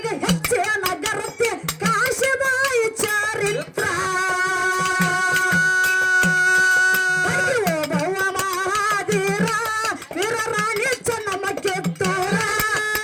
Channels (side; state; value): both; identical; correlation 1.00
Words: ಹೆಚ್ಚೆ ನಗರತ್ತೆ ಕಾಶಿಬಾಯಿ ಚಾರಿತ್ರ ಭವ ಮಹಾದೀರ ವೀರರಾಣಿ ಚೆನ್ನಮ್ಮ ಕಿತ್ತೂರ